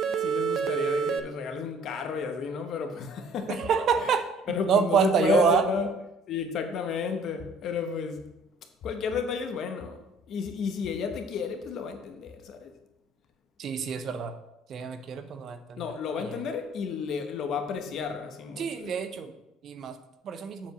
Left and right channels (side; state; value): both; normal; correlation 0.55